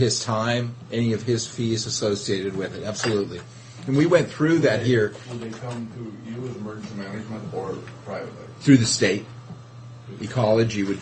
time, any of his fees associated with it. Absolutely. And we went through that here Would they come to you as emergency management or privately? through the state. Through ecology would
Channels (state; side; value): identical; both; correlation 1.00